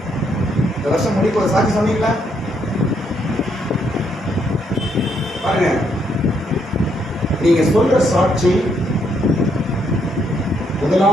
இந்த வருஷம் முடிக்க ஒரு சாட்சி சொன்னீங்களா? பாருங்க, நீங்க சொல்ற சாட்சி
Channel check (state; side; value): normal; both; correlation 0.74